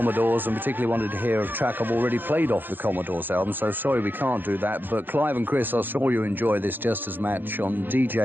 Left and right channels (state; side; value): late; left; 0.092 ms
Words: and particularly wanted to hear a track I've already played off the Commodores album, so sorry we can't do that, but Clive and Chris, I saw you enjoy this just as much on